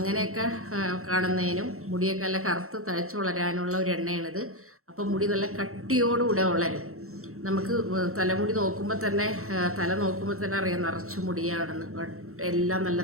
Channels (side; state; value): left; late; 0.63 ms